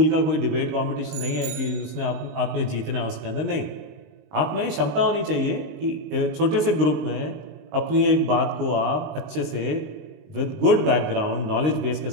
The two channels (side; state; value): left; late; 19 ms